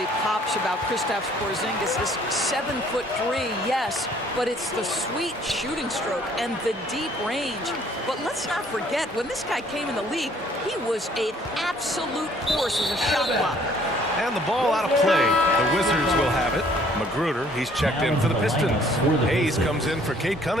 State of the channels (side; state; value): both; normal; correlation 0.59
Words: pops about Kristaps Porzingis is 7'3", yes, but it's the sweet shooting stroke and the deep range. But let's not forget, when this guy came in the league, he was an absolute force as a shot blocker. And the ball out of play. The Wizards will have it. Magruder, he's checked in for the Pistons. Hayes comes in for Cade